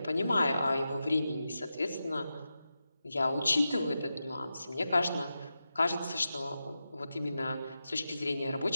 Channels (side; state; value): both; inverted; correlation -0.91